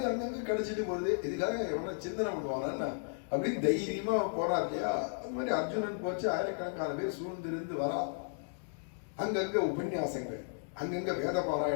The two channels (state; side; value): silent; right; 55 dB below the other